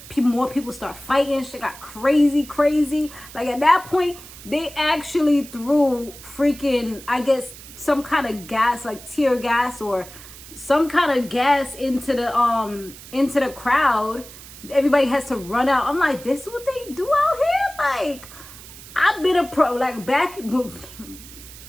More people start fighting. Shit got crazy. Like at that point, they actually threw freaking, I guess, some kind of gas, like tear gas or some kind of gas into the crowd. Everybody has to run out. I'm like, this is what they do out here? Like, I've been a pro, like back,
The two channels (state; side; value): noise; right; hiss, 17 dB below the sound